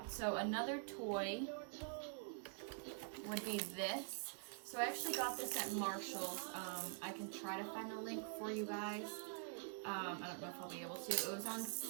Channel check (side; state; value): left; quieter; 39.3 dB